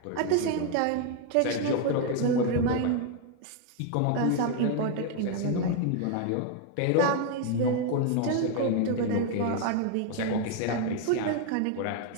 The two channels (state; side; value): different; both; correlation 0.01